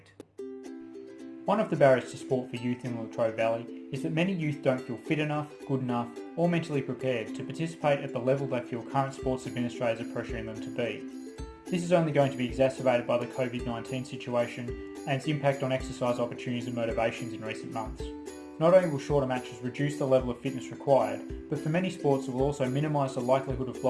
One of the barriers to sport for youth in the Latrobe Valley is that many youth don't feel fit enough, good enough, or mentally prepared to participate at the level they feel current sports administrators are pressuring them to be. This is only going to be exacerbated by the COVID-19 situation and its impact on exercise opportunities and motivations in recent months. Not only will shorter matches reduce the level of fitness required, but for many sports it will also minimise the likelihood of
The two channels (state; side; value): identical; both; correlation 1.00